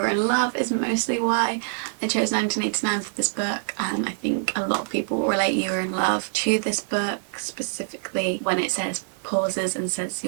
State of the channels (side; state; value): left; silent; digital silence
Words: in Love is mostly why I chose 1989 for this book. I think a lot of people relate You Were in Love to this book, specifically when it says, pauses and says,